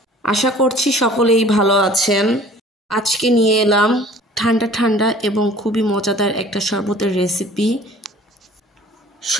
আশা করছি সকলেই ভালো আছেন। আজকে নিয়ে এলাম ঠান্ডা ঠান্ডা এবং খুবই মজাদার একটা শরবতের রেসিপি,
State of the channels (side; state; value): both; normal; correlation 0.50